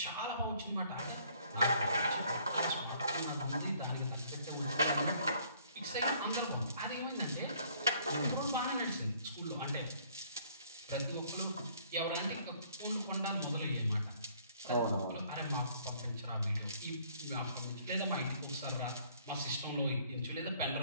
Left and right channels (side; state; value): both; inverted; correlation -0.61